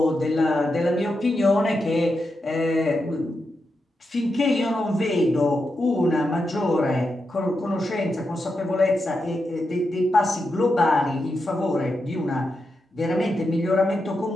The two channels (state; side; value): normal; both; correlation 0.87